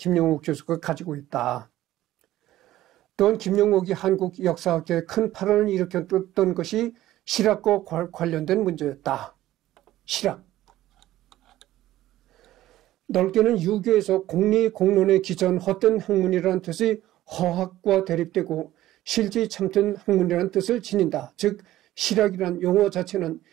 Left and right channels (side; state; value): left; quieter; 14.6 dB